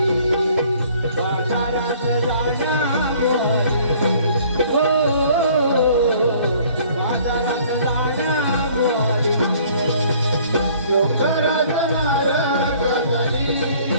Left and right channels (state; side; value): inverted; both; correlation -0.56